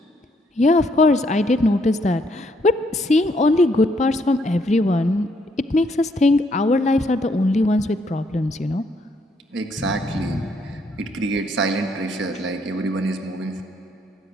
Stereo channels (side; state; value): both; normal; correlation 0.71